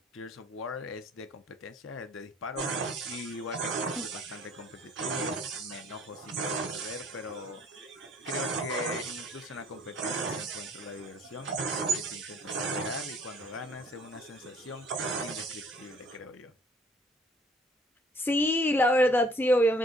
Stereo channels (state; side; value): normal; both; correlation 0.57